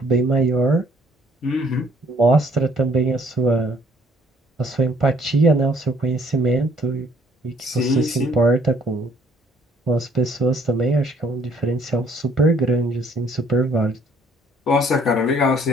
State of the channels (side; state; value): both; normal; correlation 0.61